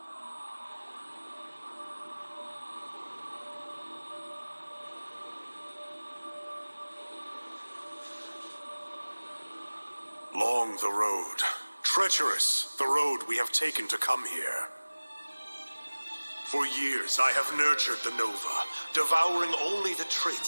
Long the road, treacherous the road we have taken to come here. For years I have nurtured the Nova, devouring only the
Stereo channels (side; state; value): both; inverted; correlation -1.00